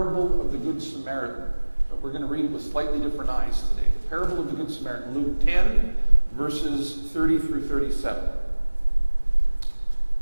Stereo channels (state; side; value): inverted; both; correlation -1.00